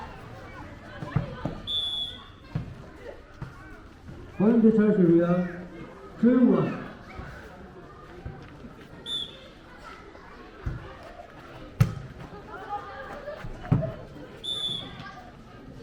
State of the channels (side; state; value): both; identical; correlation 1.00